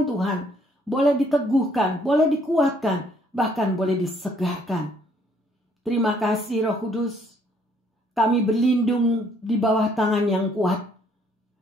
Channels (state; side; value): normal; both; correlation 0.65